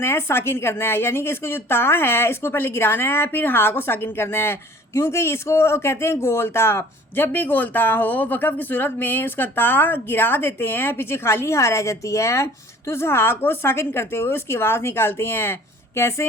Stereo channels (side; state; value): both; normal; correlation 0.50